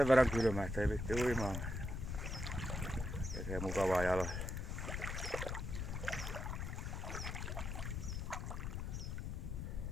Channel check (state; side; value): noise; left; rumble, 3 dB below the sound